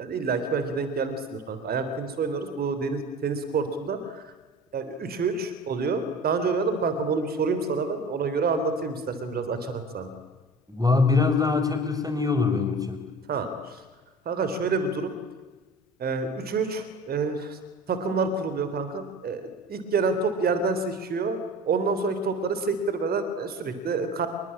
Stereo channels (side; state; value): both; normal; correlation 0.39